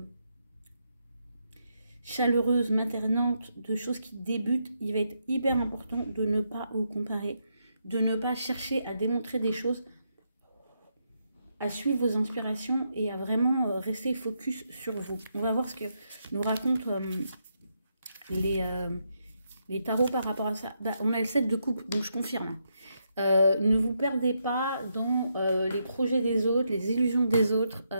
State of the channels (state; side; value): inverted; both; correlation -0.80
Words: chaleureuse, maternante, de choses qui débutent, il va être hyper important de ne pas vous comparer, de ne pas chercher à démontrer des choses, à suivre vos inspirations et à vraiment rester focus sur vous. On va voir ce que nous racontent les tarots par rapport à ça. Bah, on a le 7 de coupe, donc je confirme. Ne vous perdez pas dans les projets des autres, les illusions des autres,